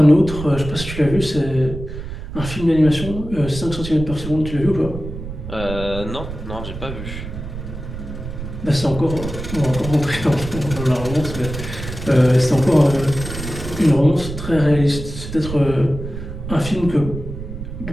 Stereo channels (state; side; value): noise; right; rumble, 9 dB below the sound